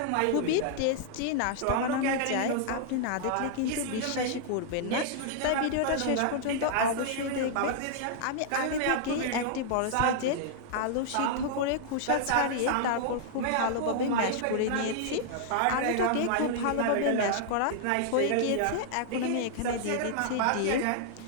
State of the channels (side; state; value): both; different; correlation -0.01